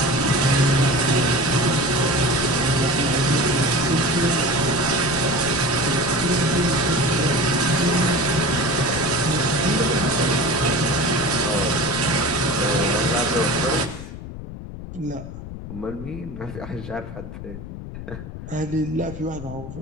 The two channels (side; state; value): left; noise; rumble, 11 dB below the sound